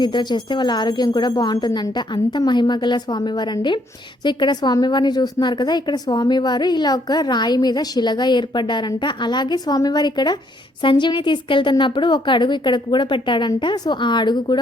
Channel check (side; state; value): both; normal; correlation 0.69